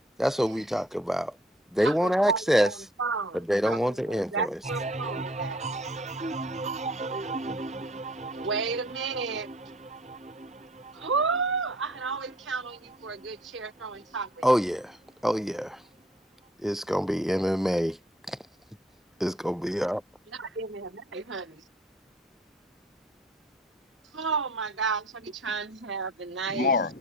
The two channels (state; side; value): normal; both; correlation 0.57